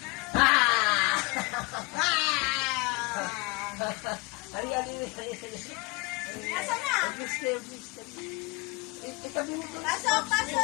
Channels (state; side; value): quieter; right; 25.7 dB